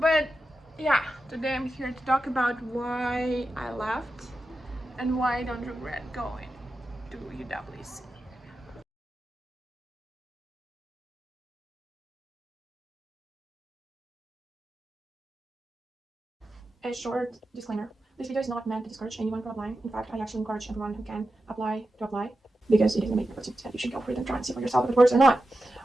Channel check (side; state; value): both; normal; correlation 0.91